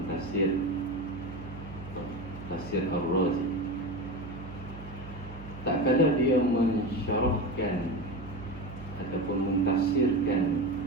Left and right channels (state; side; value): noise; right; hum, 13 dB below the sound